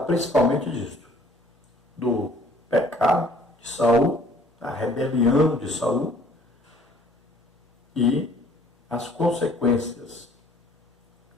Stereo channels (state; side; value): normal; both; correlation 0.56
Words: disso, do pecado de Saul, da rebelião de Saul e as consequências.